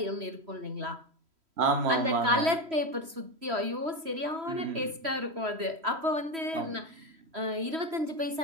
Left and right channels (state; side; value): late; left; 3.1 ms